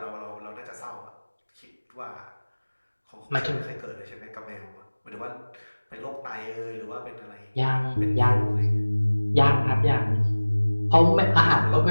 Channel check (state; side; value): inverted; both; correlation -1.00